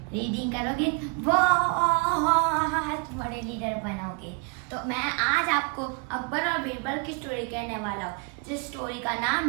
रीडिंग करोगे बहुत बड़े लीडर बनोगे। तो मैं आज आपको अकबर और बीरबल की स्टोरी कहने वाला हूँ, जिस स्टोरी का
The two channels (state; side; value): quieter; left; 33.2 dB